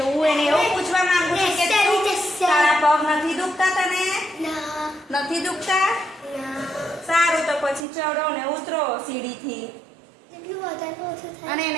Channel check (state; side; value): drops out; left; at 7.9 s